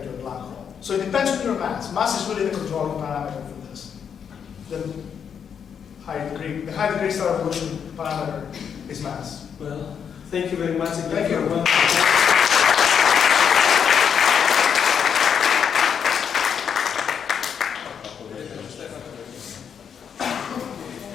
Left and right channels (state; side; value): quieter; right; 7.5 dB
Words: to a black hole. So it depends on your mass. Mass is really the controlling parameter for this. The high degree stellar evolution parameter is mass. Well, thank you very much. Thank you. Thank